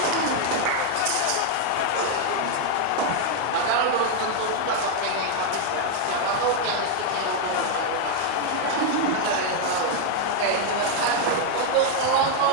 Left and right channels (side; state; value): both; different; correlation 0.00